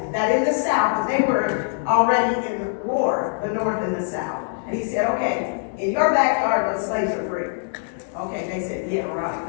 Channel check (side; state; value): right; silent; digital silence